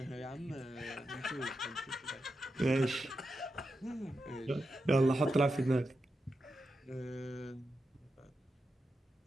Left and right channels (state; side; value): normal; both; correlation 0.88